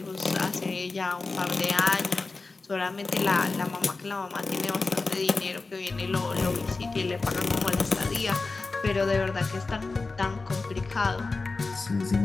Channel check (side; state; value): right; quieter; 3.8 dB